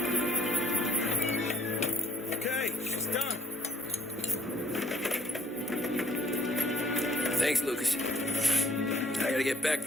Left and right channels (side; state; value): both; normal; correlation 0.61